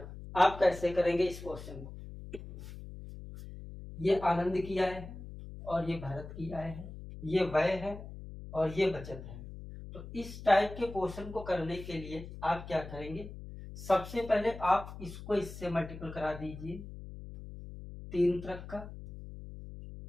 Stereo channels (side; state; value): left; noise; hum, 12 dB below the sound